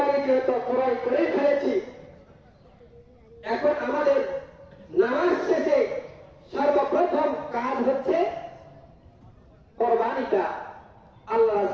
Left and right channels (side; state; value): both; identical; correlation 1.00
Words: যেহেতু ক্রয় করে ফেলেছি, এখন আমাদের নামাজ শেষে সর্বপ্রথম কাজ হচ্ছে কোরবানিটা আল্লাহ